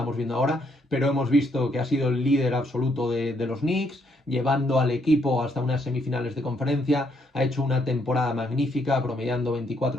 viendo ahora, pero hemos visto que ha sido el líder absoluto de los Knicks, llevando al equipo hasta unas semifinales de conferencia, ha hecho una temporada magnífica, promediando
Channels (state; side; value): normal; both; correlation 0.73